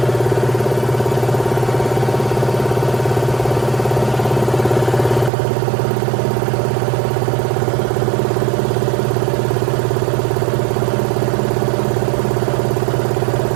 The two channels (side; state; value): left; drops out; at 5.3 s